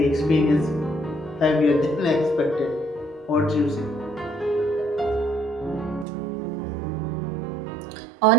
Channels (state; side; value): drops out; left; at 6.1 s